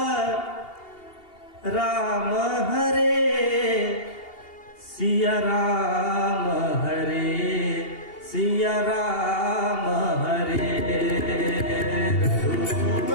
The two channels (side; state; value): right; late; 2.8 ms